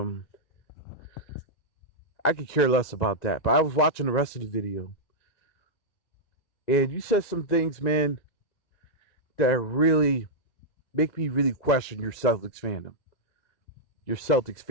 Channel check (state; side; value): late; right; 1.9 ms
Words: I could care less about that. But I was watching the rest of the video. And you said some things, man, that really make me really question your Celtics fandom. Your Celtics